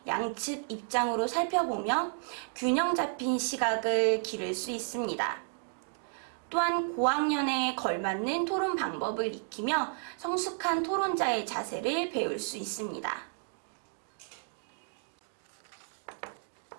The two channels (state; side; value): silent; left; digital silence